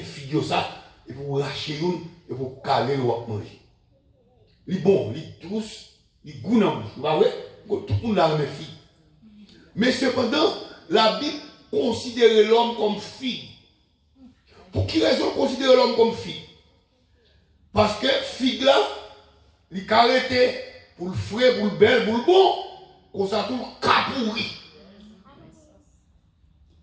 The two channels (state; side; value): identical; both; correlation 1.00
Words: figue ça, et pour lâcher une, et pour caler ou manger. Il est bon, il est douce, il est goût dans la bouche, tout le monde a une figue. Mais cependant, la Bible considère l'homme comme figue. Pour qui raison considérer l'homme comme figue? Parce que figue là, il est arrêté pour le frais, pour le bel, pour le bon, qu'on s'en trouve qu'à pourri.